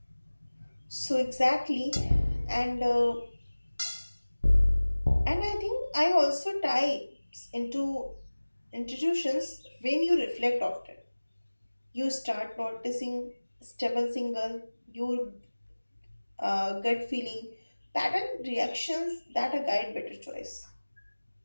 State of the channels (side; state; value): both; inverted; correlation -1.00